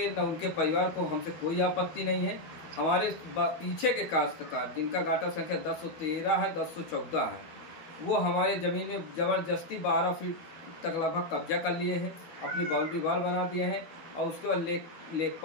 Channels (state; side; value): late; right; 13 ms